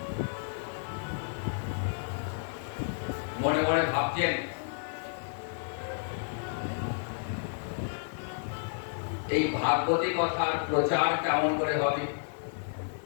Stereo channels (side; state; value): right; silent; 57 dB below the other